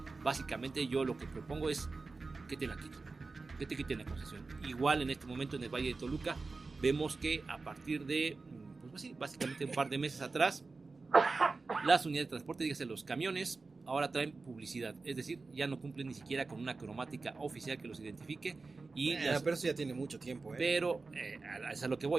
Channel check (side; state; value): left; quieter; 3.9 dB